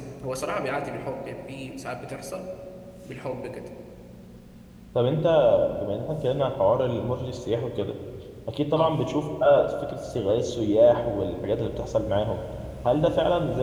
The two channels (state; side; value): identical; both; correlation 1.00